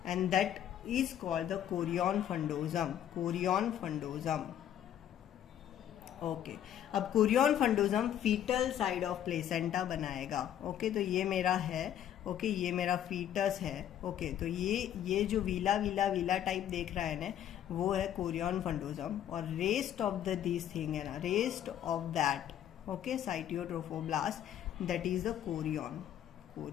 and that is called the chorion fundosum, chorion fundosum। Okay अब chorion frondosum fetal side of placenta बनाएगा। Okay तो ये मेरा है, okay ये मेरा फीटस है। ओके तो ये जो वीला वीला वीला टाइप देख रहा है ना, वो है कोरियन फंडोजम, और rest of the this thing है ना, rest of that, okay syncytiotrophoblast, that is the chorion,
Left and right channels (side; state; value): right; quieter; 10.6 dB